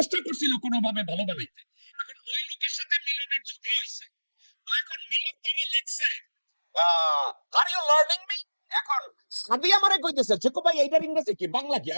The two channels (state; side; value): inverted; both; correlation -1.00